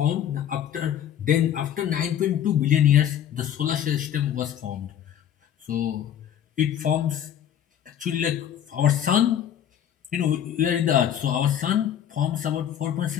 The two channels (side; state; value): right; quieter; 10.0 dB